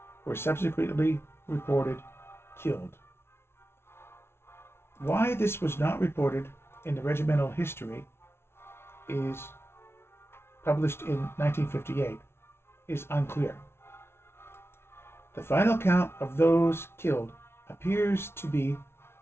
were subsequently reported killed. Why this was not reported in the regimental history is published in 1958 is unclear. The final count of those killed appears to be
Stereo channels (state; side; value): late; right; 0.12 ms